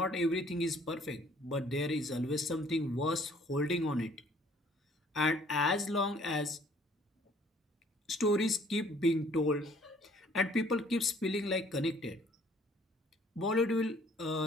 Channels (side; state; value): both; normal; correlation 0.59